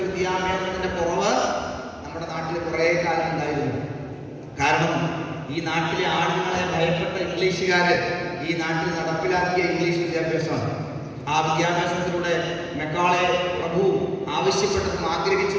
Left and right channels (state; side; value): identical; both; correlation 1.00